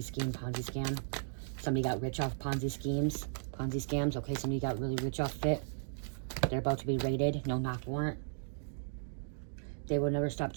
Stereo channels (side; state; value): left; silent; digital silence